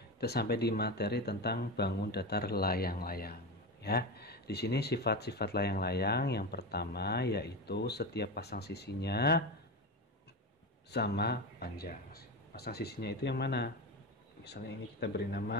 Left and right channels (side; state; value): both; normal; correlation 0.20